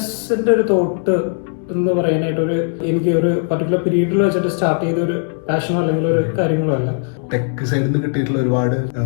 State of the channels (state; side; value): silent; right; 67 dB below the other